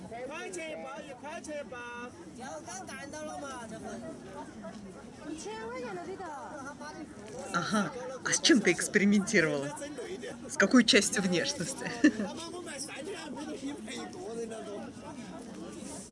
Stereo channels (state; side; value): identical; both; correlation 1.00